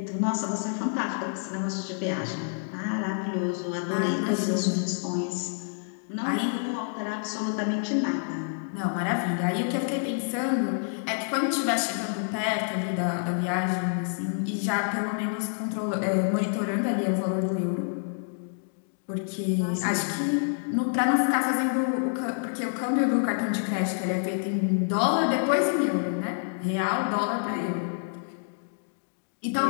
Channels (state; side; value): silent; right; digital silence